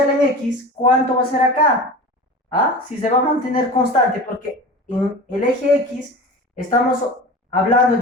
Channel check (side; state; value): both; normal; correlation 0.34